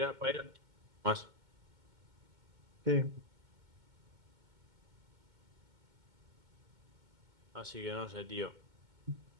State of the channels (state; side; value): late; left; 2.2 ms